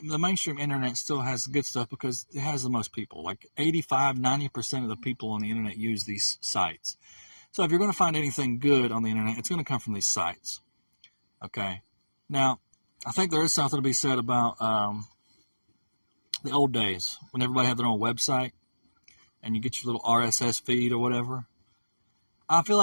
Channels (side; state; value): both; inverted; correlation -1.00